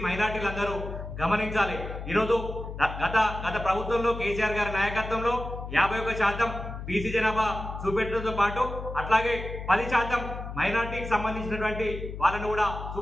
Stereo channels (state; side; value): noise; left; hum, 8 dB below the sound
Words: మైనార్టీలందరూ గమనించాలి. ఈరోజు గత ప్రభుత్వంలో కేసీఆర్ గారి నాయకత్వంలో 51% బీసీ జనాభా చూపెట్టడంతో పాటు అట్లాగే 10% మైనార్టీకి సంబంధించినటువంటి వాళ్ళను కూడా